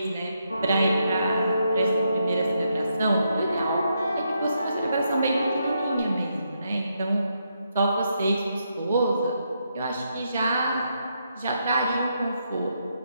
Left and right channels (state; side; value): inverted; both; correlation -0.79